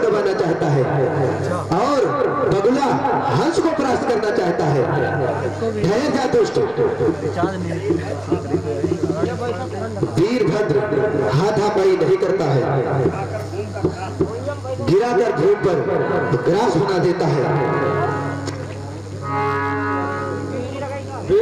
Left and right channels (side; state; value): left; noise; rumble, 27 dB below the sound